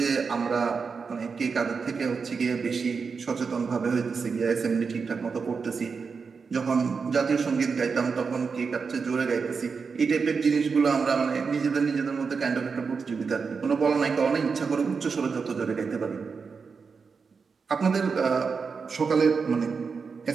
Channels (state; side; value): quieter; left; 5.3 dB